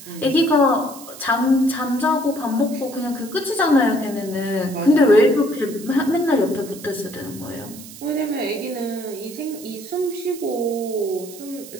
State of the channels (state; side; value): noise; right; hiss, 16 dB below the sound